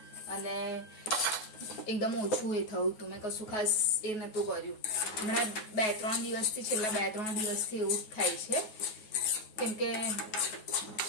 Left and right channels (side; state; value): right; late; 9.3 ms